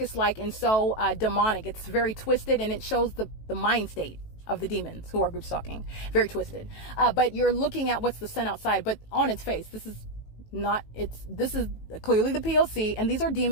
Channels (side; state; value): right; late; 18 ms